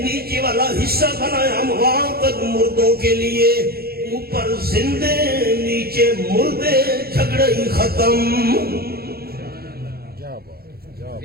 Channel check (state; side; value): late; left; 0.45 ms